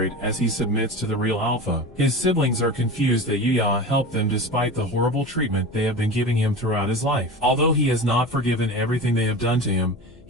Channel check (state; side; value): noise; left; hum, 25 dB below the sound